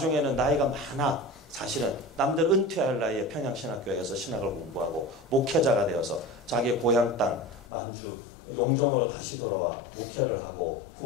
나이가 많아 사실은 남들 은퇴할 나이에 평양신학교에서 신학을 공부하고 목회자가 되어서 자기의 고향 땅 만주 용정으로 다시 돌아와 목회를 하고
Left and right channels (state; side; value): drops out; right; at 7.7 s